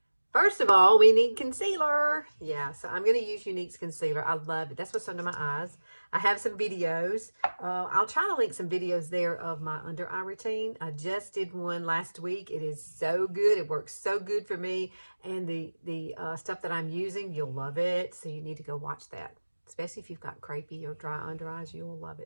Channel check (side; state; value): both; inverted; correlation -1.00